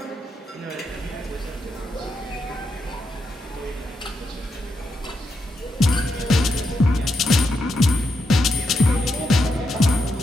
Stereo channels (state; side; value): normal; both; correlation 0.83